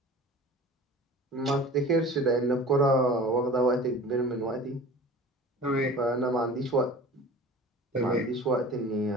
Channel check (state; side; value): normal; both; correlation 0.41